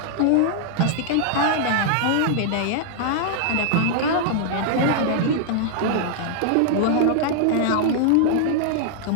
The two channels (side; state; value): both; different; correlation -0.01